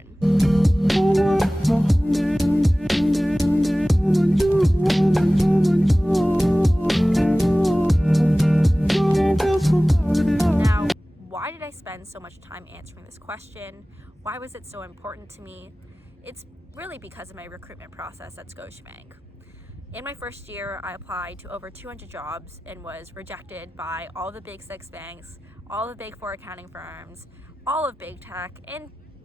Now, why did I spend so much time answering this question? Why was it so important to me? It's really because of my recruitment process at Scotiabank. In my first year, I applied to over 200 jobs and was rejected by all the big six banks, all the big four accounting firms, all of big tech, and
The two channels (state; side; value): normal; both; correlation 0.97